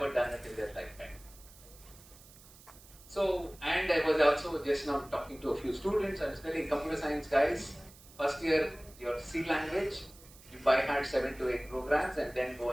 done it in their lifetime. So, and I was also just now talking to a few students. I was telling computer science guys, first year your C language, you by heart 7 to 8 programs and then go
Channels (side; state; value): right; noise; hiss, 22 dB below the sound